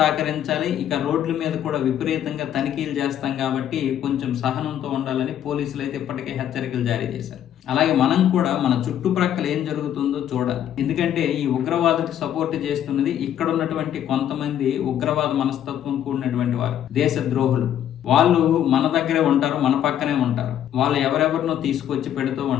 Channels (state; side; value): quieter; right; 10.5 dB